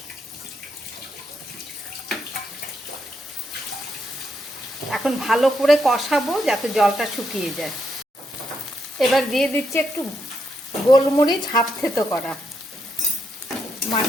এখন ভালো করে কষাবো যাতে জলটা শুকিয়ে যায়। এবার দিয়ে দিচ্ছি একটু গোলমরিচ হাফ থেতো করা।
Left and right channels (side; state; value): both; normal; correlation 0.79